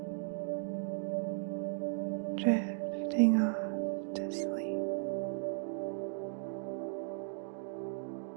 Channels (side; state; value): left; silent; digital silence